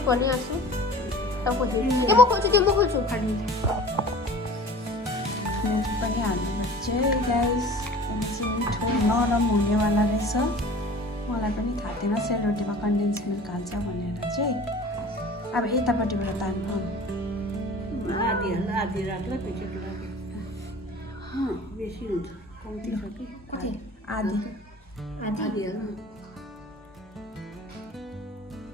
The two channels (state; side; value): normal; both; correlation 0.43